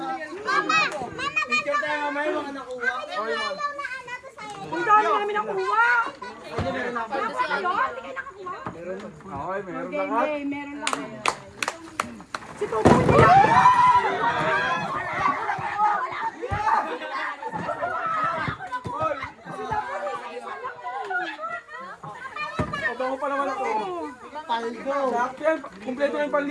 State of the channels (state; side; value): identical; both; correlation 1.00